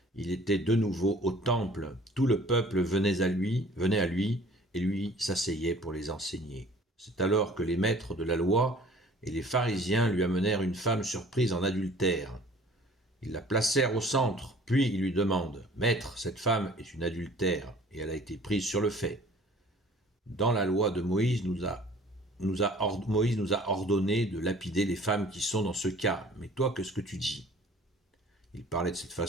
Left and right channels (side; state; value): both; normal; correlation 0.51